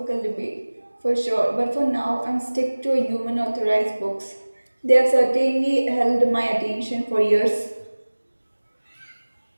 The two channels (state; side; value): inverted; both; correlation -1.00